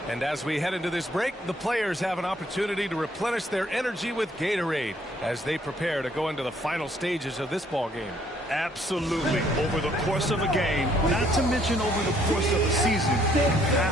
And as we head into this break, the players have an opportunity to replenish their energy with Gatorade as they prepare to go into the final stages of this ball game. Absolutely. Over the course of a game, not to mention over the course of a season, you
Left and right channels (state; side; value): normal; both; correlation 0.66